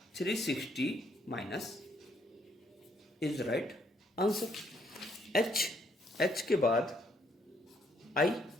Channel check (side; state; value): both; normal; correlation 0.70